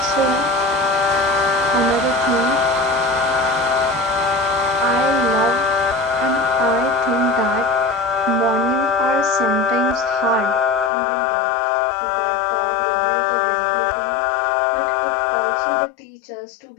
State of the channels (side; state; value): right; drops out; at 10.9 s